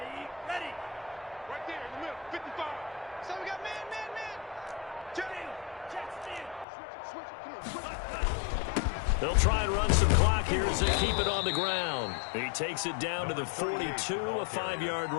They'll try and run some clock here as they keep it on the ground. He takes it down to the 42, a 5-yard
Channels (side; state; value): right; drops out; at 6.7 s